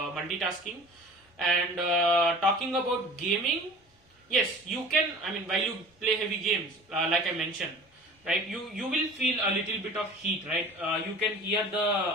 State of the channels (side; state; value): both; normal; correlation 0.43